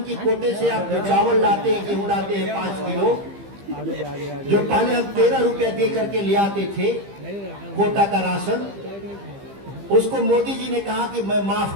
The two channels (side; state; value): left; late; 15 ms